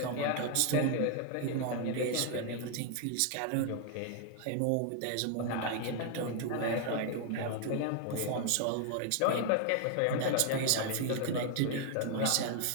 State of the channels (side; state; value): both; different; correlation 0.00